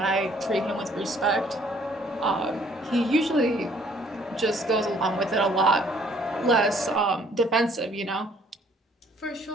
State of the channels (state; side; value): normal; both; correlation 0.61